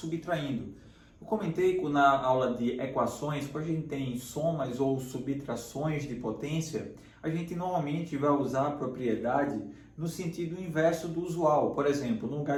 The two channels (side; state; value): both; identical; correlation 1.00